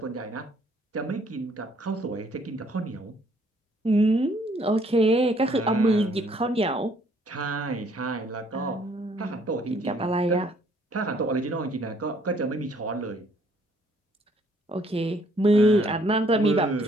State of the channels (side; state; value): both; normal; correlation 0.64